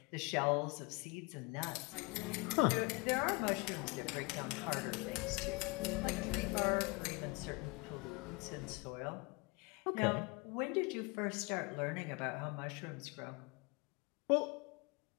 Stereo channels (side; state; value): right; quieter; 28.7 dB